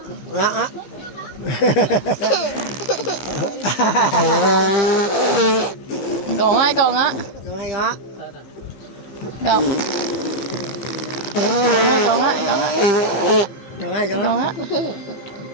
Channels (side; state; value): right; late; 15 ms